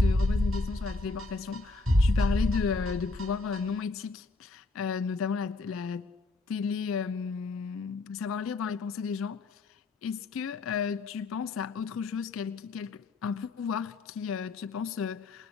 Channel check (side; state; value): right; quieter; 3.4 dB